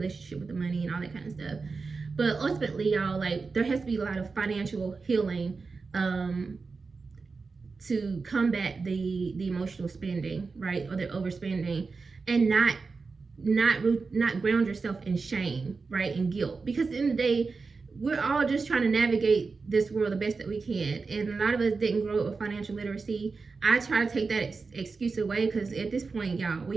with the money and all that kind of stuff. But ultimately, y'all, like, there has to be a lot of financial healing to combat the emotional spending, right, or the overspending, and not not ground yourself in shame, right, and guilt, because at the end of the day, we're all just trying to navigate this world the best that we can, and a lot of us didn't grow up with financial literacy. I try to take that excuse away, because at this point, y'all,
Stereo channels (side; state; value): left; quieter; 4.4 dB